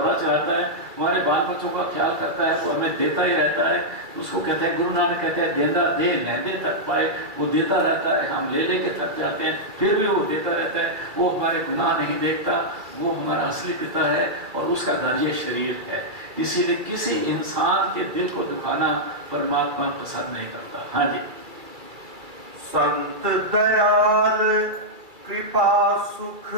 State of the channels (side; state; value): left; late; 2.3 ms